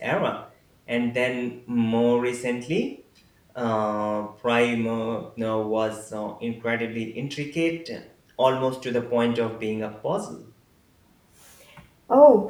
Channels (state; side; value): identical; both; correlation 1.00